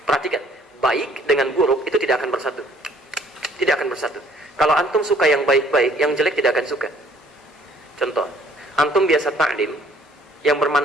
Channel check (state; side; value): normal; both; correlation 0.59